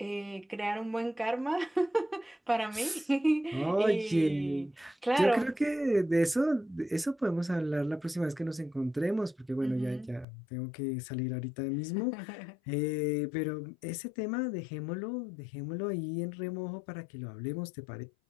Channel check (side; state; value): right; drops out; at 10.2 s